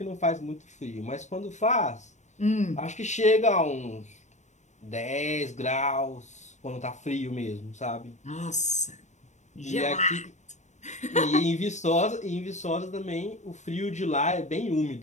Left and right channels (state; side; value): late; right; 0.34 ms